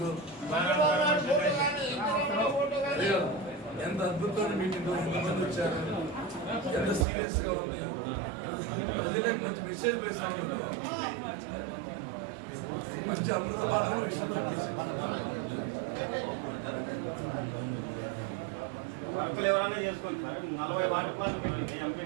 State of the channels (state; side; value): drops out; left; at 7.1 s